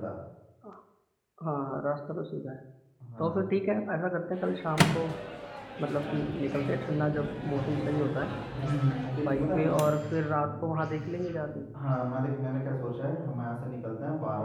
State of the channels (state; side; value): identical; both; correlation 1.00